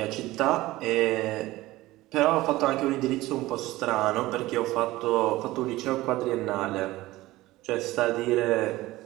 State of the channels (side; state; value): left; quieter; 18.0 dB